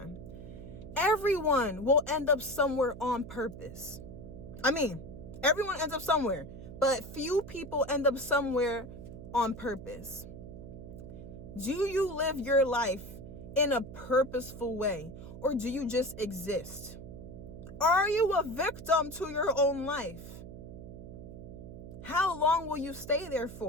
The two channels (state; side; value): noise; right; hum, 12 dB below the sound